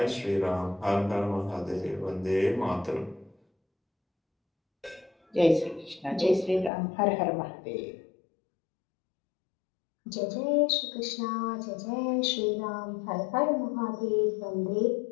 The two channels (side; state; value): right; drops out; at 6.7 s